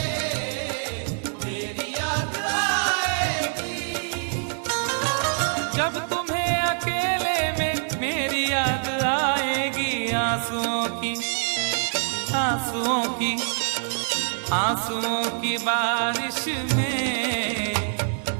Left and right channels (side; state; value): left; silent; 55 dB below the other